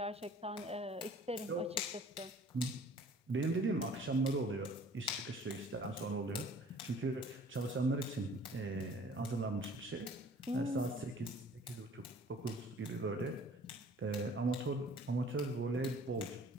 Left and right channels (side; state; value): both; normal; correlation 0.51